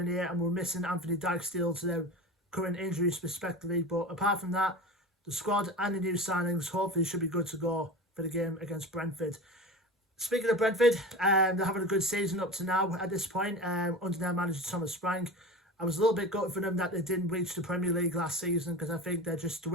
and we're missing Anthony Dijksteel to their current injuries respectively. But apart from that, the squad and the new signings hopefully should be good to go for the game against Brentford. Speaking of Brentford, they're having a good season up to now at this point under their manager Thomas Frank. I was a little bit gutted for them that they didn't reach the Premier League last season, because I think they just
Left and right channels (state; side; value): normal; both; correlation 0.30